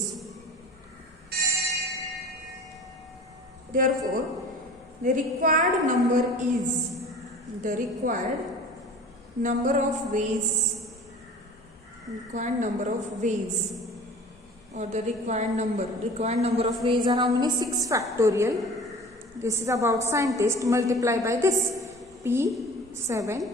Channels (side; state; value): both; normal; correlation 0.43